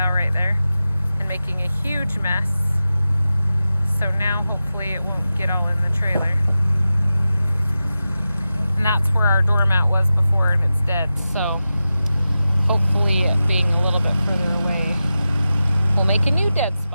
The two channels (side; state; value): both; inverted; correlation -0.93